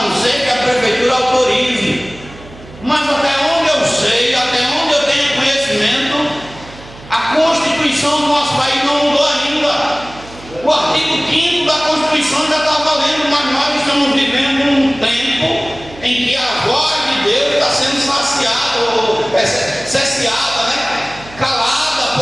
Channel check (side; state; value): right; noise; hum, 19 dB below the sound